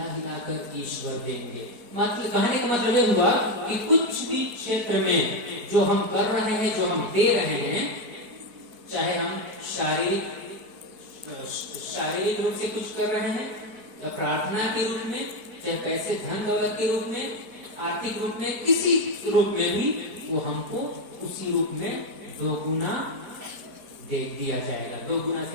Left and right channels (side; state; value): left; late; 4.6 ms